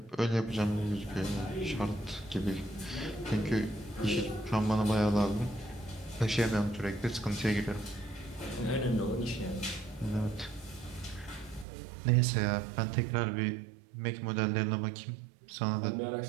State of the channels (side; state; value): left; drops out; at 11.7 s